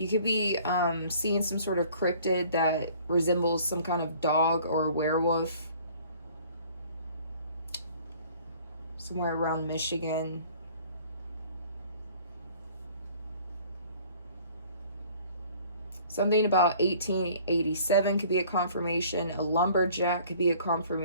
could be seeing some sort of cryptid that resembles some kind of dog or werewolf. Somewhere around Michigan. Something about 1887 could be a confirmation. A lumberjack could be a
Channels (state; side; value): inverted; both; correlation -0.53